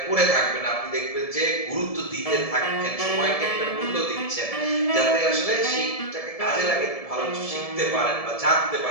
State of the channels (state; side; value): late; right; 1.7 ms